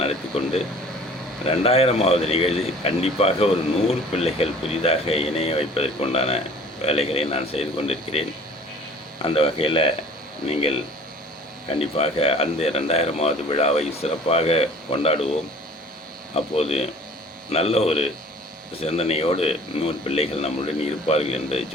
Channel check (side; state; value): both; normal; correlation 0.48